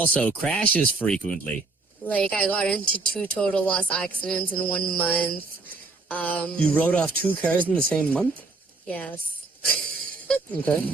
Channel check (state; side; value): quieter; left; 3.7 dB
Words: crashes frequently. Like, I got into 2 total loss accidents in 1 month. You wrote off 2 cars in the same month? Yes. Okay.